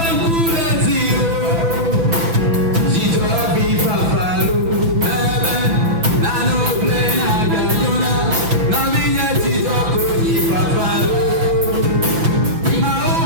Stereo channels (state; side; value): late; left; 6.0 ms